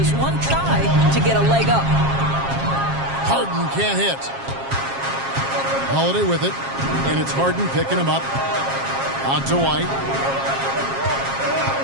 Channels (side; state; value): left; late; 7.4 ms